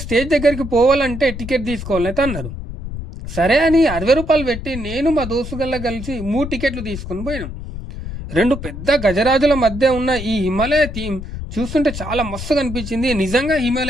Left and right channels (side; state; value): left; noise; rumble, 9 dB below the sound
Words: స్టేజ్ దగ్గరికి పోవాలంటే టికెట్ తీసుకోవాలని అయితే అన్నారు. సరే అని 60 రూపాయలు పెట్టి నేను మా దోస్తుగల్లా కలిసి 3 టికెట్లు తీసుకొని పోయినాం. 2 పెద్ద గజరాజుల మధ్య ఉన్న ఈ హిమాలయ థీమ్ చూస్తుంటే చాలా మస్తుగా అనిపించింది. నిజంగా